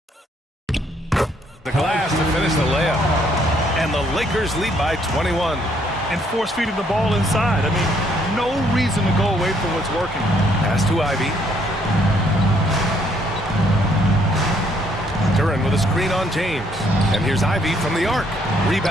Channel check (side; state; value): both; normal; correlation 0.68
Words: The glass to finish the layup. And the Lakers lead by 21. And force feeding the ball inside. I mean, no reason to go away from what's working. Pass to Ivy. Duran with a screen on James. And here's Ivy from the arc.